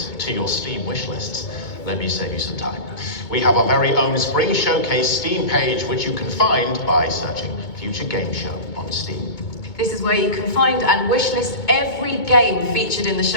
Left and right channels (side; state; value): right; late; 2.2 ms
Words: to your Steam wishlists, let me save you some time. We have our very own Spring Showcase Steam page, which you can find by searching Future Game Show on Steam. This is where you can find and wishlist every game featured in the show.